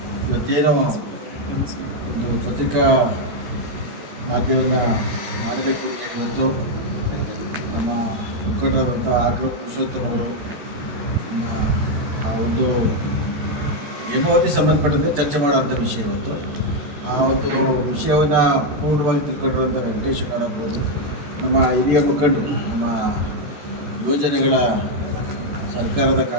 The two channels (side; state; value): left; late; 14 ms